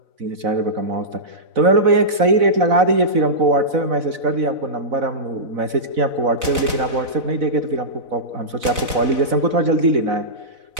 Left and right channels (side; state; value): left; late; 4.0 ms